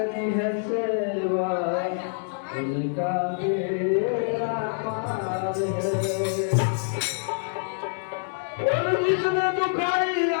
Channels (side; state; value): right; silent; digital silence